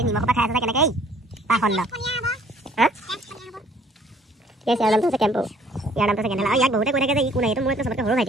নিমখ পৰা খাই আছে কেনেকৈ পাখণ্ড হা ঠিক আছে ইয়াৰ নামটো আছে কেম্পো ইয়াৰ নামটো আছে কেনেলা ইয়াক বহুতে কৈ থাকে যে ই কোন এইটো মোৰ চবতকৈ সৰু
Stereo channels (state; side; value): normal; both; correlation 0.58